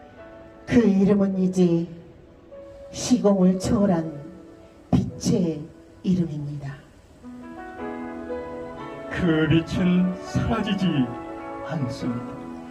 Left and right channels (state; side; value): identical; both; correlation 1.00